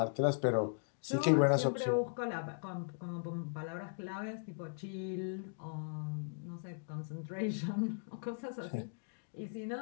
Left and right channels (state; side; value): silent; right; digital silence